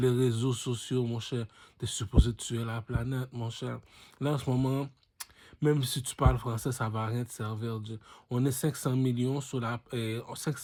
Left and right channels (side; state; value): both; identical; correlation 1.00